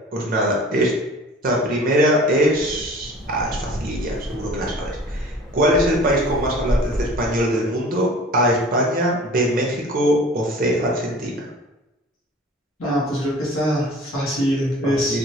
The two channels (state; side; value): normal; both; correlation 0.44